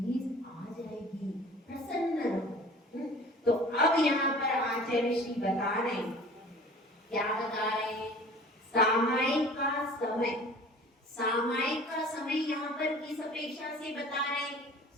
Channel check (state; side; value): normal; both; correlation 0.45